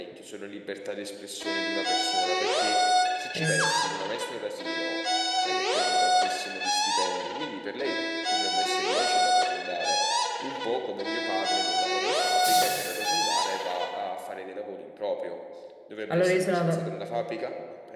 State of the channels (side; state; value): both; identical; correlation 1.00